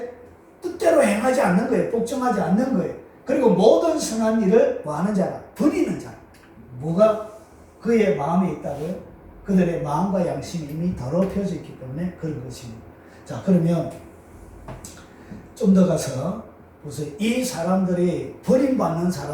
뜻대로 행하지 않는 거예요. 복종하지 않는 거예요. 그리고 모든 선한 일을 뭐 하는 자라? 버리는 자. 뭐가 그의 마음에 있다고요? 그들의 마음과 양심이 이미 더럽혀져 있기 때문에 그런 것입니다. 자, 그러면 좀 더 가서 보세요. 이 사람들이, 버림받는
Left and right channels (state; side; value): identical; both; correlation 1.00